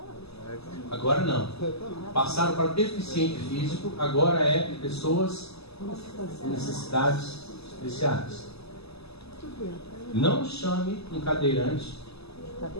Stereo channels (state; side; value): late; right; 0.79 ms